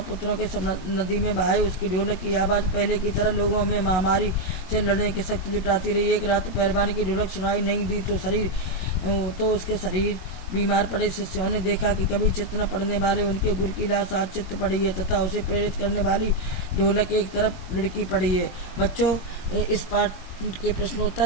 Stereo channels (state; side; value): late; right; 22 ms